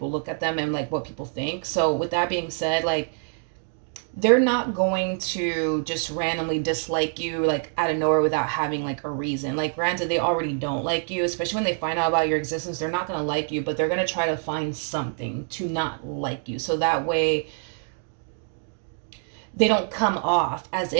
look at them and like what people think. So with that being said, like they're not going to just randomly dislike you like out of nowhere without having like a reason. Like granted, they already don't like you, especially when they find out about your existence. They're not going to like you, but they're going to try to find something to not like you, so that way they don't come off as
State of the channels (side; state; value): left; silent; 61 dB below the other